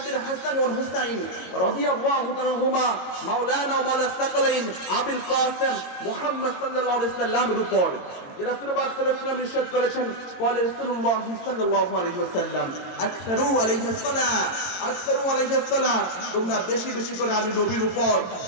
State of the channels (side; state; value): right; late; 22 ms